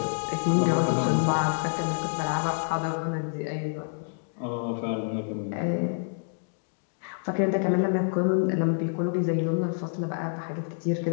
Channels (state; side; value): silent; right; digital silence